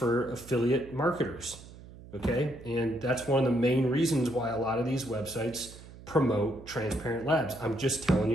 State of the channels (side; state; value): right; noise; hum, 18 dB below the sound